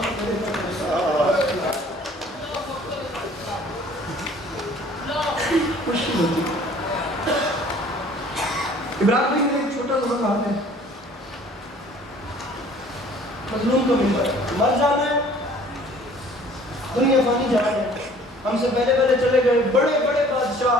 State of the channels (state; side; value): normal; both; correlation 0.53